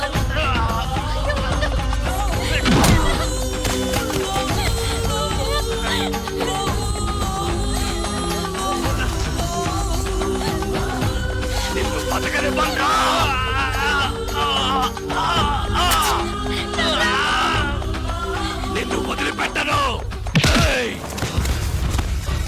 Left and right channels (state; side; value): identical; both; correlation 1.00